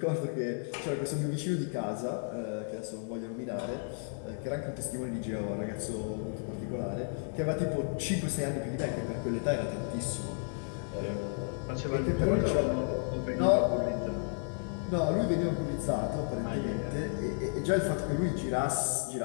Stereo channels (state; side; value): silent; right; 56 dB below the other